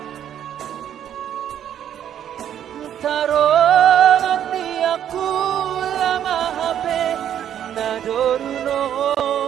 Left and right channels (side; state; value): left; quieter; 10.0 dB